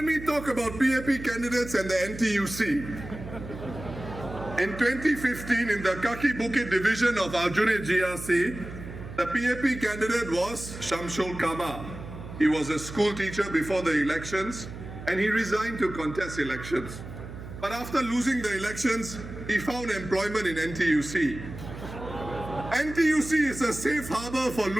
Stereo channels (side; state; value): right; noise; hum, 11 dB below the sound